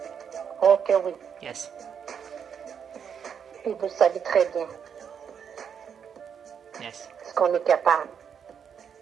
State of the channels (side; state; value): left; quieter; 7.5 dB